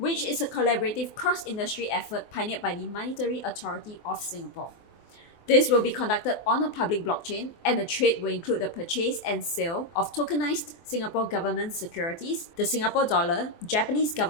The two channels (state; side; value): late; right; 24 ms